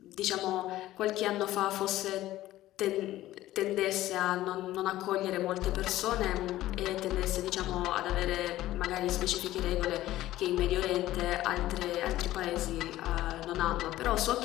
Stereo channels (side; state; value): right; quieter; 15.2 dB